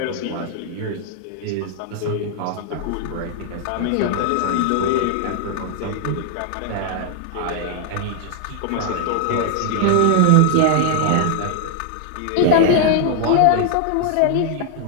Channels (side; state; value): both; different; correlation 0.00